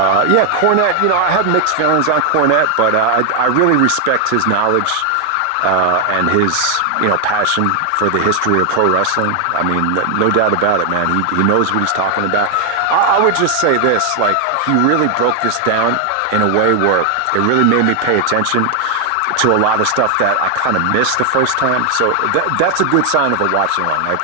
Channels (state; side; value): different; both; correlation 0.00